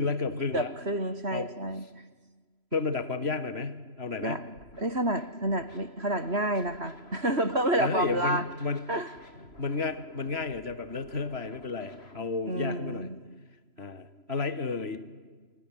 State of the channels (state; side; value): late; left; 3.0 ms